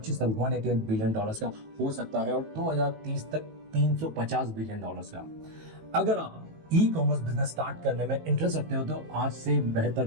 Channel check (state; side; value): late; left; 18 ms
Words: तक $188 बिलियन का हो सकता है और 2030 तक $350 बिलियन का। अगर आप ई कॉमर्स बिजनेस स्टार्ट करने में इंटरेस्ट रखते हो तो आज से बेहतर